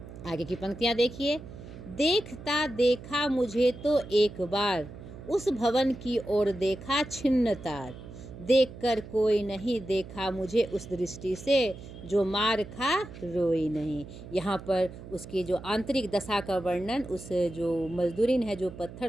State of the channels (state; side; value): noise; right; hum, 14 dB below the sound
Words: आगे की पंक्तियाँ देखिए। देखता देखा मुझे तो एक बार, उस भवन की ओर देखा छिन्न तार, देखकर कोई नहीं देखा मुझे उस दृष्टि से, जो मार खा रोई नहीं। यहाँ पर उसकी जो आंतरिक दशा का वर्णन, उस जो मजदूरिन है जो